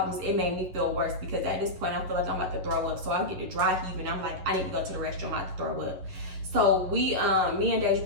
It made me feel worse, because at this point I feel like I'm about to throw up. So I get to dry heave, and I'm like, I need to go to the restroom, I'm about to throw up. So we, me and Dave,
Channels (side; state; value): left; late; 11 ms